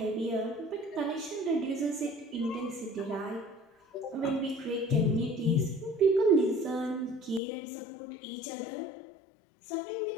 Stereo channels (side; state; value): right; drops out; at 7.4 s